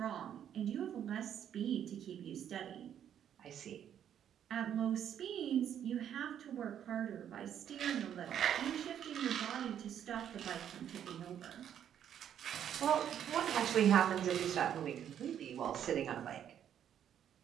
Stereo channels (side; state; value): left; quieter; 9.6 dB